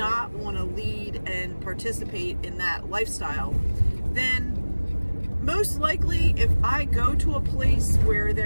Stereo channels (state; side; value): inverted; both; correlation -1.00